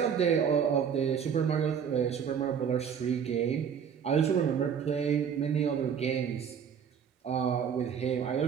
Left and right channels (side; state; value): left; quieter; 7.6 dB